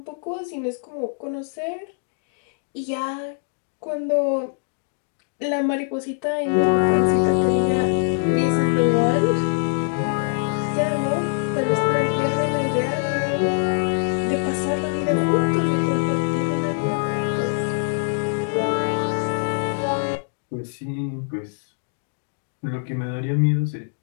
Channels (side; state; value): right; silent; digital silence